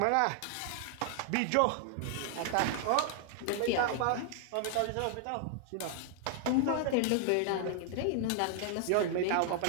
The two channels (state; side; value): different; both; correlation 0.00